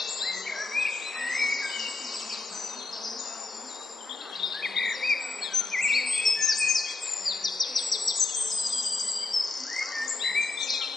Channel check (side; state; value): right; quieter; 3.6 dB